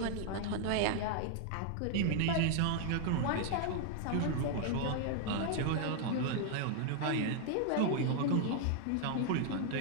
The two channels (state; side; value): different; both; correlation 0.00